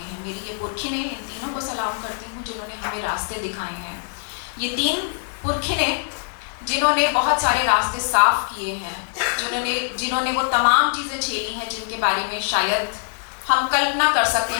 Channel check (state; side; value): silent; right; digital silence